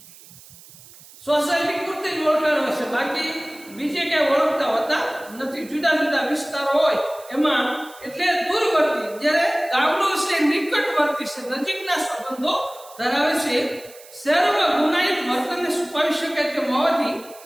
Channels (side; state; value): right; noise; hiss, 21 dB below the sound